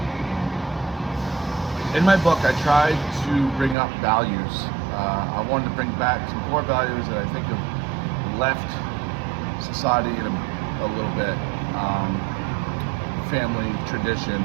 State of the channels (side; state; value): left; drops out; at 3.8 s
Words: In my book, I tried to bring up values. I wanted to bring back some core values that I think have left society in a little bit. Family, tradition.